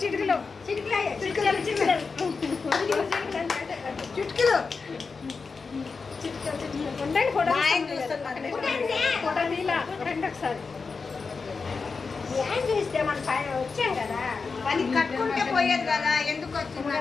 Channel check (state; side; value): quieter; right; 4.7 dB